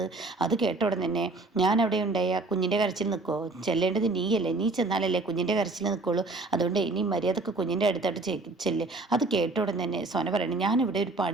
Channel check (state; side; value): quieter; left; 3.2 dB